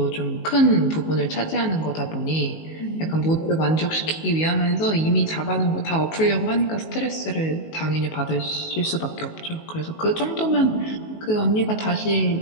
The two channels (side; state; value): right; late; 19 ms